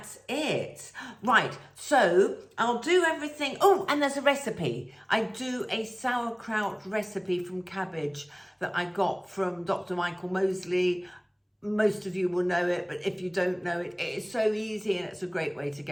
it. Right, so I'll do everything. Oh, and there's a recipe. I do a sauerkraut recipe from cabbage that I got from Dr. Michael Mosley. Most of you will know it, but if you don't know it, it is so easy, and it's a great way to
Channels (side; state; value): both; identical; correlation 1.00